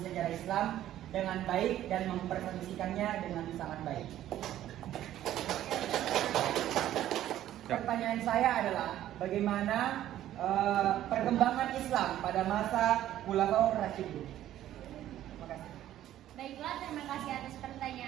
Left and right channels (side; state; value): left; quieter; 12.7 dB